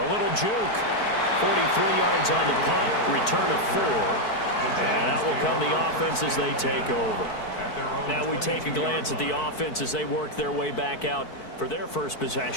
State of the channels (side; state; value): right; late; 4.6 ms